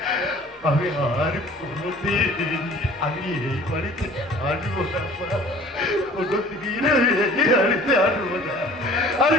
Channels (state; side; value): normal; both; correlation 0.49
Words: আমি আর কোনোদিন আমি এই বাড়িতে আসবো না, কোনোদিন আমি এই বাড়িতে আসবো না, আর